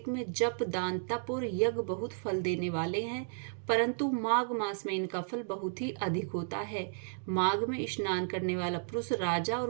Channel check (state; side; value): silent; left; digital silence